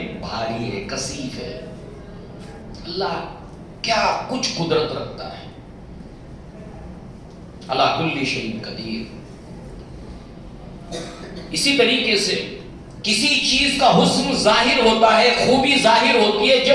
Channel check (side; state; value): both; identical; correlation 1.00